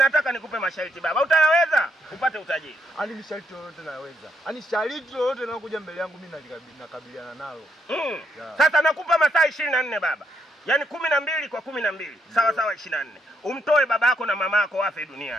nikupe masharti baba. Utayaweza upate utajiri? Ani masharti yote naweza. Ani sharti yote linalokuja mbele yangu mimi nakabiliana nalo. Sasa nakupa masaa 24 baba. Yaani 12 kwa 12. Sawa 24. Umtoe baba yako na mama yako wafe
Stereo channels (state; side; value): normal; both; correlation 0.76